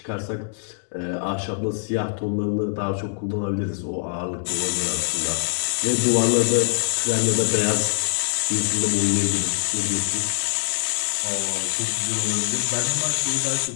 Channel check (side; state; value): right; silent; digital silence